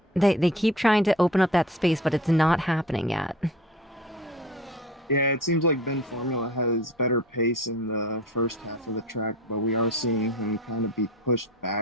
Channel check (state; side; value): normal; both; correlation 0.40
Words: They keep trying to open up that space, but it's not happening yet. Yeah, it seems like Ben Formula has better pace in the first half of the track, but we are seeing him kind of be pushed